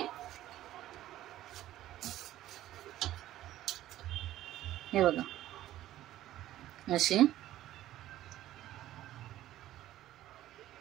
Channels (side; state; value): left; quieter; 13.9 dB